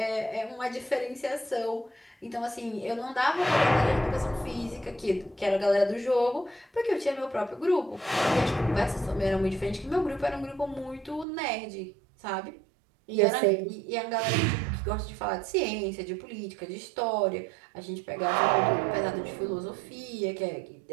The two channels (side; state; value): left; drops out; at 11.2 s